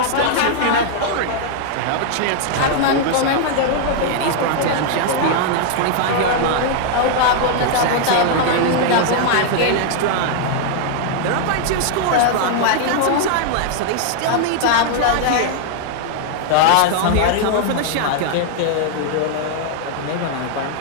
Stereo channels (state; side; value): different; both; correlation 0.00